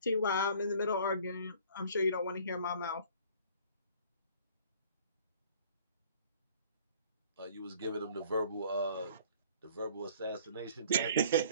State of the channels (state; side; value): inverted; both; correlation -0.53